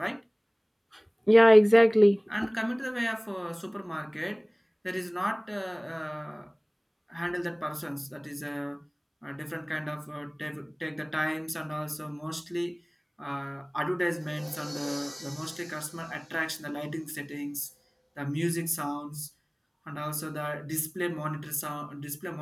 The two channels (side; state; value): both; identical; correlation 1.00